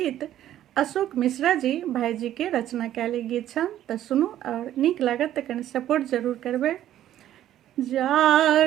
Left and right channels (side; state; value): left; quieter; 12.2 dB